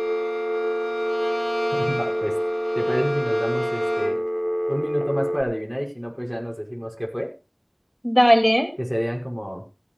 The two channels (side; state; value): both; identical; correlation 1.00